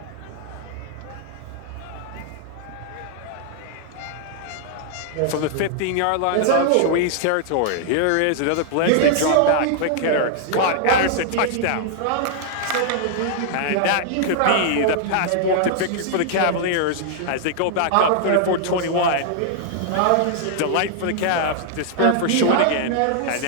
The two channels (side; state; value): both; different; correlation -0.01